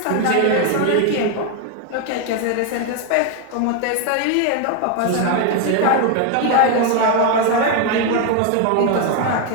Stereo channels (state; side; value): different; both; correlation 0.01